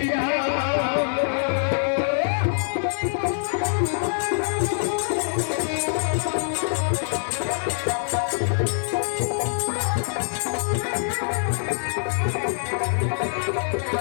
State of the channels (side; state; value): right; silent; digital silence